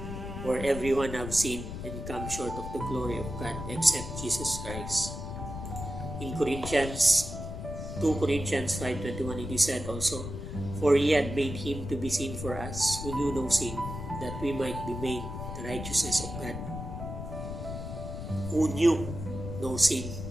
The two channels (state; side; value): noise; left; rumble, 7 dB below the sound